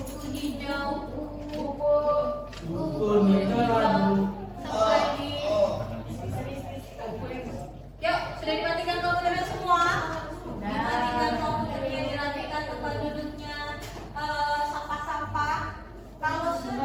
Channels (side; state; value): both; identical; correlation 1.00